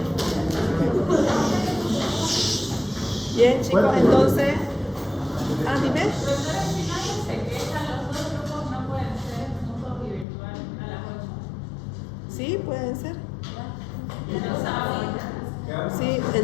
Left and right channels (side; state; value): right; drops out; at 10.2 s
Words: Bien, chicos, entonces. Dime. Sí, pueden ser. Sí,